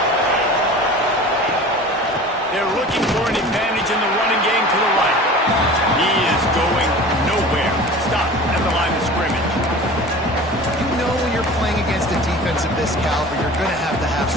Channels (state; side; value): normal; both; correlation 0.39